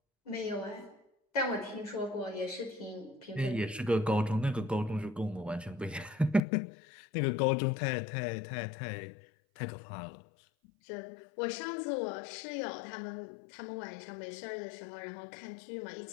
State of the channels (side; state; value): right; drops out; at 6.4 s